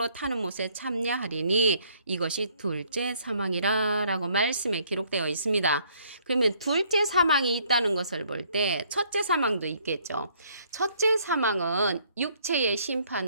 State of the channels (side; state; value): both; inverted; correlation -0.64